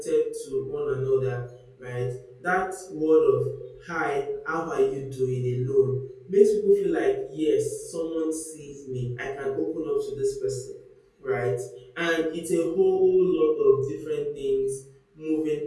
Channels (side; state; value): both; identical; correlation 1.00